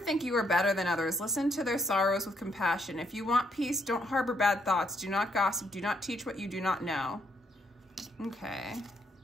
you are better than others. Listen to their sorrows with compassion. If you want peace, don't harbor bad thoughts. Do not gossip. Do not teach what you do not know. Okay.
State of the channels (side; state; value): both; normal; correlation 0.73